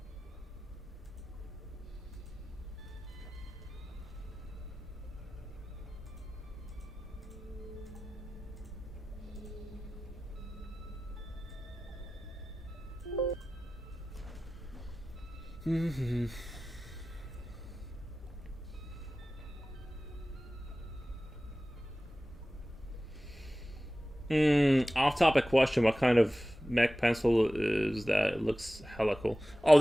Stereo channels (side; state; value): both; normal; correlation 0.96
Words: Off-topic question: what kind of mech pencil is that? It looks hella cool. Oh,